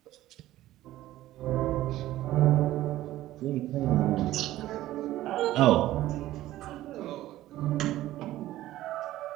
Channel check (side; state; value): left; quieter; 15.0 dB